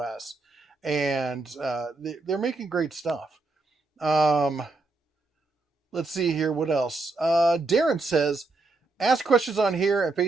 And they're making great stuff. Let's see here. What else? Darren says, ask questions on here and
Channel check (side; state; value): left; quieter; 3.4 dB